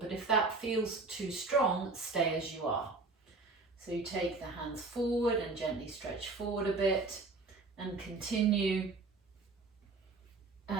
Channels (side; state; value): left; quieter; 3.7 dB